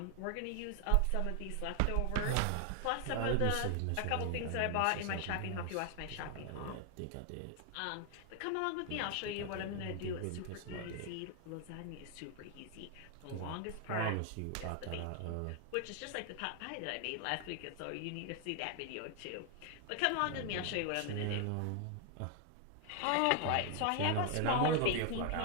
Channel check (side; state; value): both; different; correlation 0.00